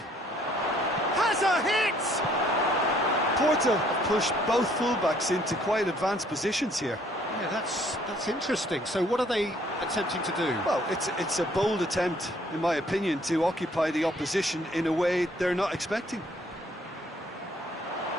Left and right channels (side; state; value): both; normal; correlation 0.62